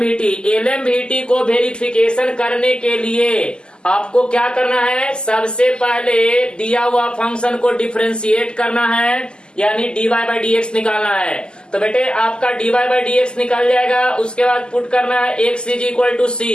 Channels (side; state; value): right; late; 0.047 ms